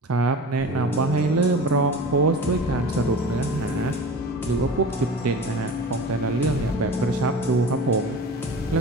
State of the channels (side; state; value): both; normal; correlation 0.35